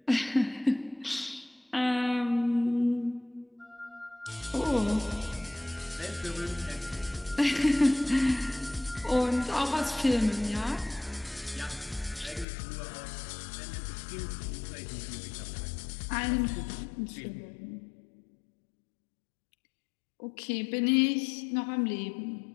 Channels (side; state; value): right; drops out; at 12.5 s